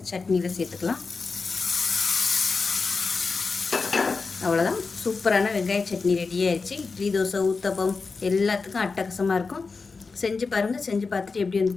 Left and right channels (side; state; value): right; quieter; 4.4 dB